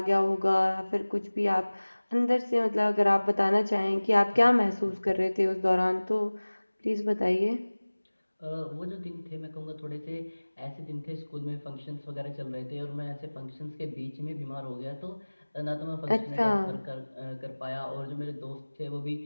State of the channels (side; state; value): both; inverted; correlation -1.00